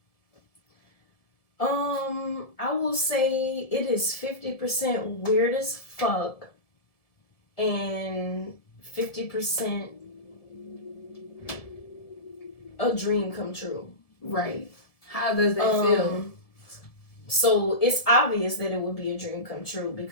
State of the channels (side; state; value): right; late; 1.7 ms